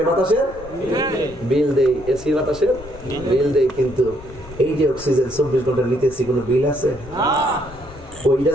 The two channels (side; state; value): left; noise; rumble, 17 dB below the sound